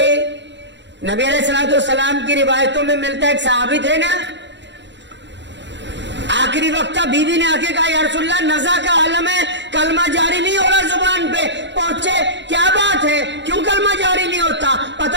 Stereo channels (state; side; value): late; left; 0.52 ms